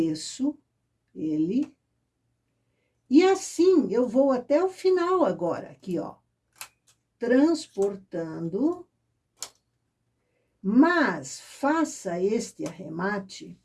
ele, e assim eu vou até o final agora, aqui, ó, transportando, mas faça este arremate,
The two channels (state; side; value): identical; both; correlation 1.00